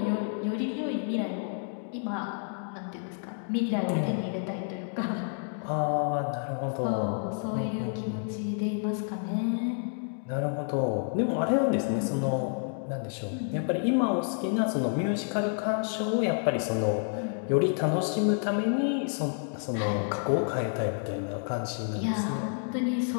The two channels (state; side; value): silent; right; 58 dB below the other